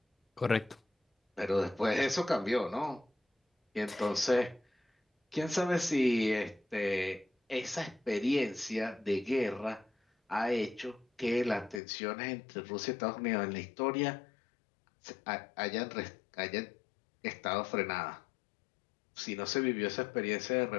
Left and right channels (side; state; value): right; drops out; at 11.8 s